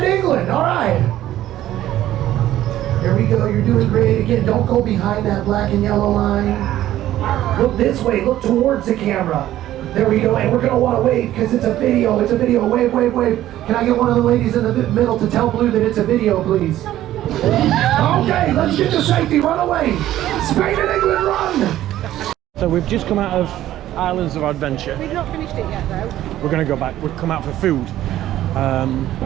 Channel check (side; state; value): left; quieter; 13.4 dB